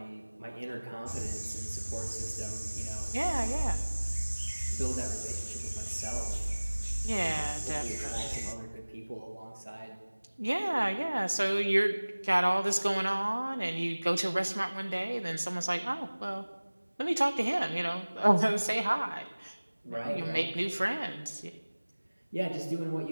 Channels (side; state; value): both; inverted; correlation -1.00